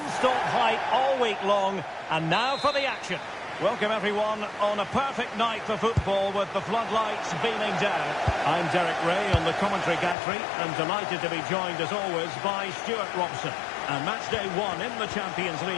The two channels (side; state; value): right; drops out; at 10.2 s